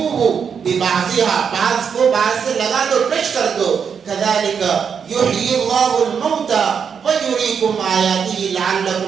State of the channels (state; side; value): quieter; left; 6.8 dB